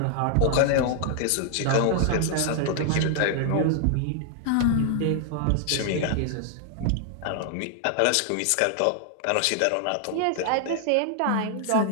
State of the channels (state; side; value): different; both; correlation 0.00